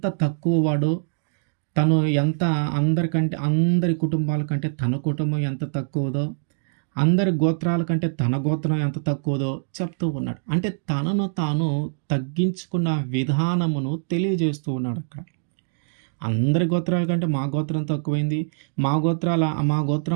తక్కువ వాడో, తను ఎంత అందరి కుటుంబాల కంటే తన కుటుంబం ఎంత తక్కువదో, అందరి గోత్రాల కంటే తన గోత్రం ఎంత తక్కువదో చెప్తూ ఉన్నాడు. అంటే తనను తాను తగ్గించుకున్న విధానమును తెలియజేస్తూ ఉన్నాడు అక్కడ. అందరి గోత్రాల కంటే మా గోత్రం తక్కువైంది, మా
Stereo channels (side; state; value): left; silent; digital silence